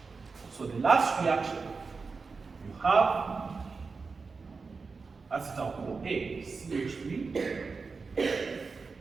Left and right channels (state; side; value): quieter; left; 4.6 dB